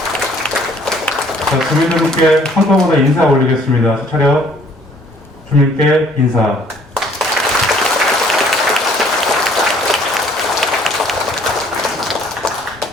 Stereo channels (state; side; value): normal; both; correlation 0.59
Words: 자, 주민들께 한꺼번에 인사 올리겠습니다. 차렷. 주민께 인사.